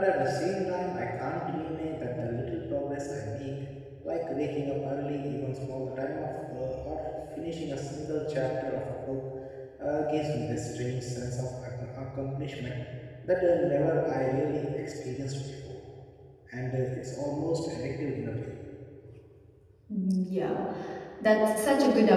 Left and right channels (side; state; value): both; identical; correlation 1.00